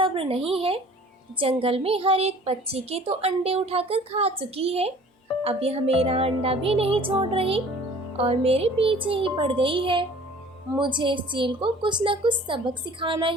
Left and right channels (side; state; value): both; normal; correlation 0.49